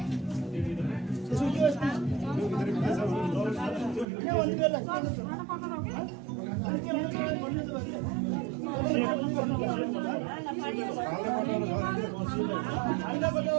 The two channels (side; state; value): left; drops out; at 4.0 s